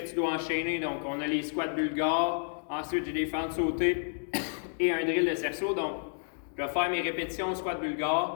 dois enchaîner. Donc, on a les squats bulgares, ensuite j'ai des fentes sautées et un drill de cerceau. Donc, je vais faire mes répétitions squat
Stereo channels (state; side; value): silent; right; digital silence